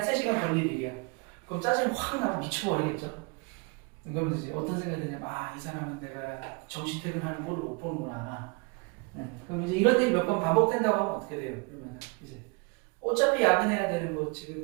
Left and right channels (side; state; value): left; quieter; 31.2 dB